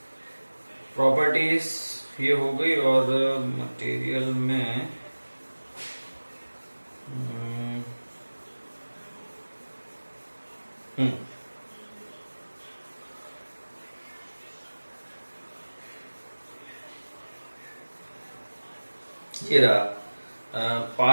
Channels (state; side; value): inverted; both; correlation -1.00